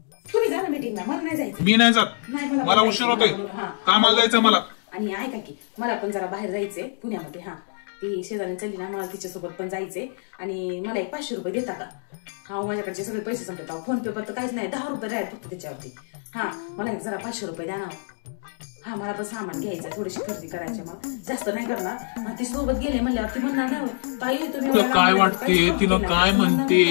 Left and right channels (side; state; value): right; silent; digital silence